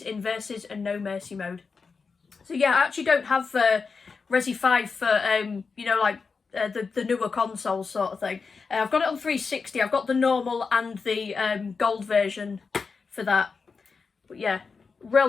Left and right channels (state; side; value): quieter; right; 4.9 dB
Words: in Versus and No Mercy mode. So yeah, I actually don't have Resi 5 for, you know, like the newer consoles sort of thing. I've got it on 360, I've got the normal and the gold version for that. But yeah,